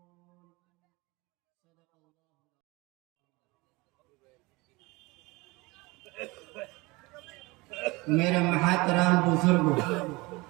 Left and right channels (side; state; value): left; quieter; 23.7 dB